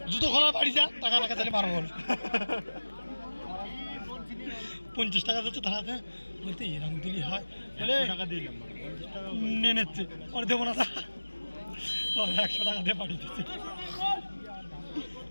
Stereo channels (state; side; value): inverted; both; correlation -1.00